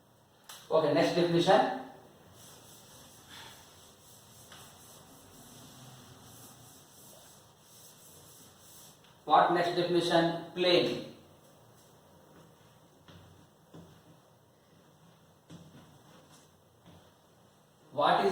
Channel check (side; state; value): both; identical; correlation 1.00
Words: Okay, next definition. What next definition? Plane. What